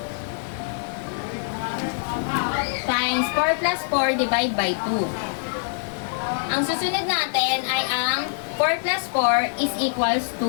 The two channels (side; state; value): right; silent; digital silence